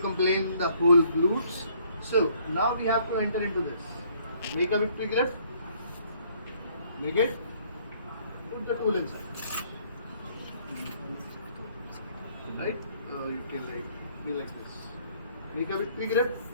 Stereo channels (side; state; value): both; inverted; correlation -0.63